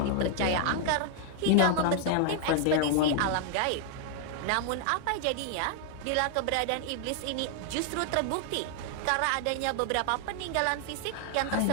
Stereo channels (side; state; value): both; different; correlation 0.00